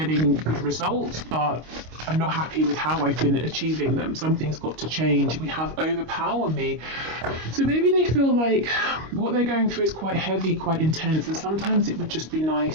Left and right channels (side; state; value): left; late; 25 ms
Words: good results, but I'm not happy with how I've been achieving them. Something's got to change. We have overpower me. So maybe they feel like what they're going through is quite heavy, quite intense, and sometimes it would just be